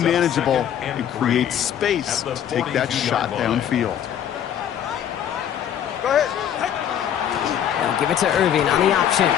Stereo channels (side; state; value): right; quieter; 9.7 dB